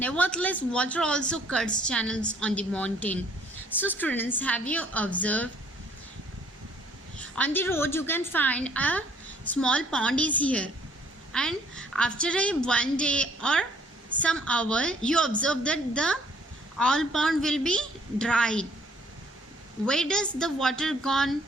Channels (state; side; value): normal; both; correlation 0.61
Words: water also cuts channels on the mountain. So students, have you observed? On the road you can find a small pond is here, and after one day or some hour you observe that the all pond will be dried. Where does the water gone?